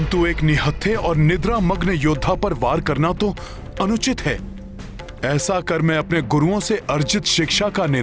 एक निहत्थे और निद्रा मग्न योद्धा पर वार करना तो अनुचित है। ऐसा कर मैं अपने गुरुओं से अर्जित शिक्षा का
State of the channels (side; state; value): both; identical; correlation 1.00